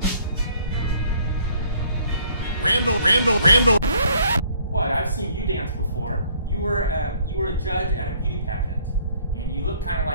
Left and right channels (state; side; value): inverted; both; correlation -0.60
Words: Randall. Randall. Randall. What? I've seen you dance before. You were a judge at a beauty pageant, and you look kind of